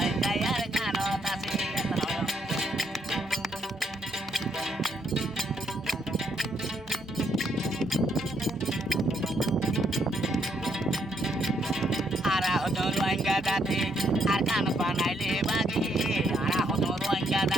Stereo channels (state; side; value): normal; both; correlation 0.74